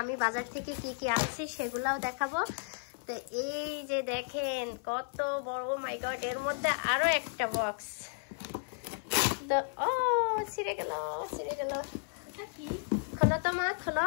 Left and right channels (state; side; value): silent; right; 56 dB below the other